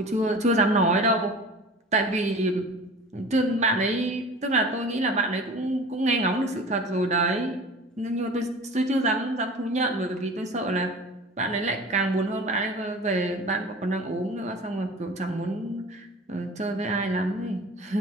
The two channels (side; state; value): both; normal; correlation 0.39